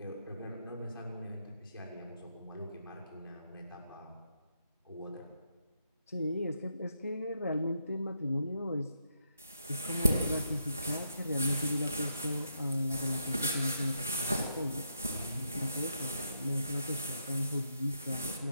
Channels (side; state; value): both; inverted; correlation -0.81